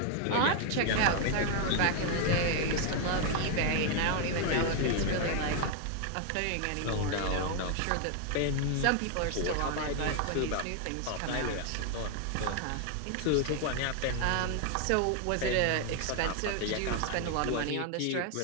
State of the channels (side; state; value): both; different; correlation 0.01